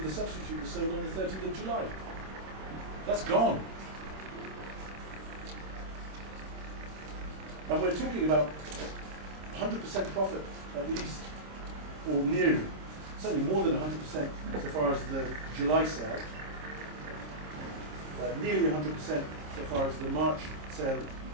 the substitute, was sold on the 30th of July. That's gone. And we're talking about 100% profit at least, or nearly, certainly more than 100% so far as the July sale, nearly 100% so far as the March sale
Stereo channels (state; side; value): late; left; 26 ms